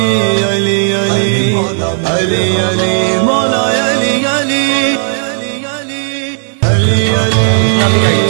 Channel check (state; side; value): silent; left; digital silence